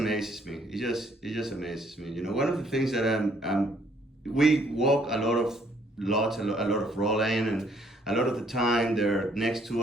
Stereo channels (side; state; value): both; normal; correlation 0.65